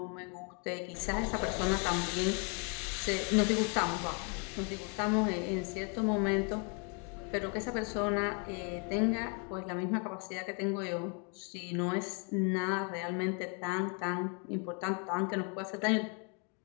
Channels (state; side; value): quieter; right; 37.0 dB